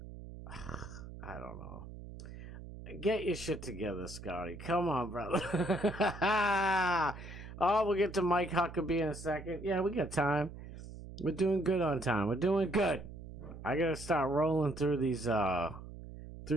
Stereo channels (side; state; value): right; noise; hum, 13 dB below the sound